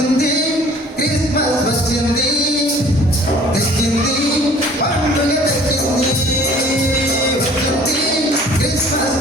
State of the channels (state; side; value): normal; both; correlation 0.51